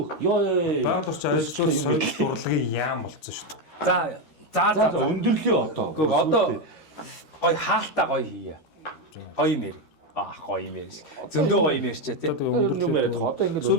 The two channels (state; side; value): late; right; 13 ms